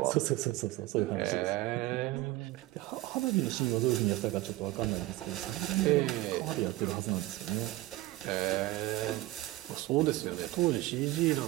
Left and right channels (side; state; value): left; quieter; 17.9 dB